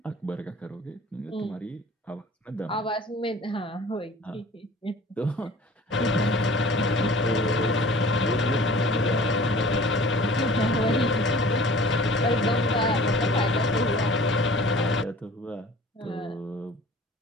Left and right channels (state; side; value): normal; both; correlation 0.47